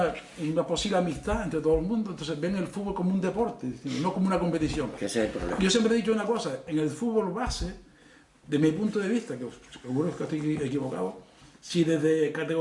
posible amistad entre todo el mundo, entonces ven el fútbol como un deporte, no como una competición. Que ese es el problema. Yo siempre he dicho una cosa, en el fútbol base, de mi punto de vista, que seguro que estoy equivocado, si desde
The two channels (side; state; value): both; identical; correlation 1.00